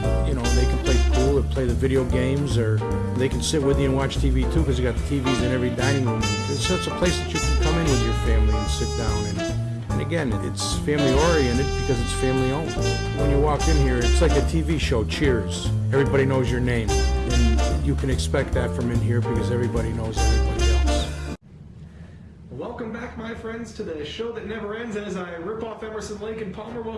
you know, they can play pool or play the video games, or they can sit with you and watch TV too, because you got the TVs in every dining room. It's such a place that you can come in with your family and sit down. And again, it's family oriented because it's family owned. When you walk in here, it's like a TV show, Cheers. Everybody knows your name. And you can expect that from in here because everybody knows everybody else. Welcome back, my friends, to the show that never ends. And as I rip off Emerson, Lake, and Palmer,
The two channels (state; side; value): identical; both; correlation 1.00